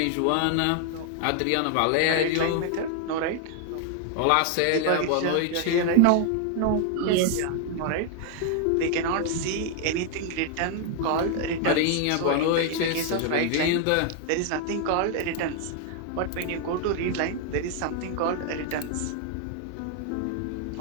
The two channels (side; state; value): both; different; correlation 0.00